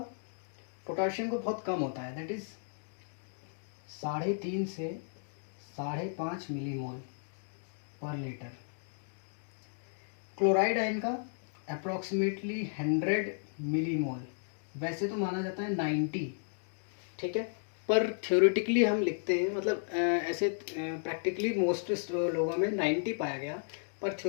बहुत कम होता है, दैट इज 3.5 से 5.5 मिलीमोल पर लीटर। क्लोराइड आयन का अप्रॉक्सीमेटली 100 मिलीमोल, वैसे तो माना जाता है 90, ठीक है, पर थ्योरेटिकली हम लिखते हैं, मतलब ऐसे प्रैक्टिकली मोस्ट लोगों में 90 पाया गया, पर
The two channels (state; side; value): silent; right; digital silence